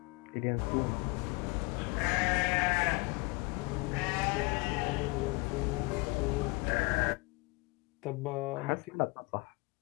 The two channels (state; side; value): quieter; right; 27.8 dB